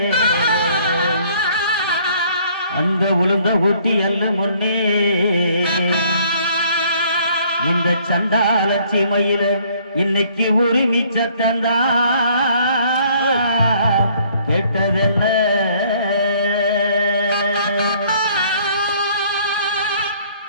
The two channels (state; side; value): inverted; both; correlation -0.61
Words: அந்த உளுந்த ஊட்டி அல்ல முன்னே இந்த சண்டால சீமையில இன்னைக்கு உரிமை சத்தந்தா கேட்டதென்ன